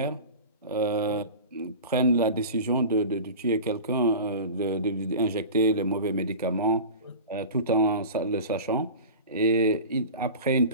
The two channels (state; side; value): inverted; both; correlation -0.34